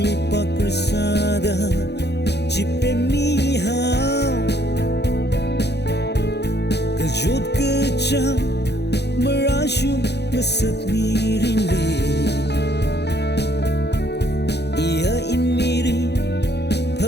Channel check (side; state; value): right; late; 0.49 ms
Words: lipat bersada jipe mihau kejut kejang merasyum ngeset miring li ia inmiri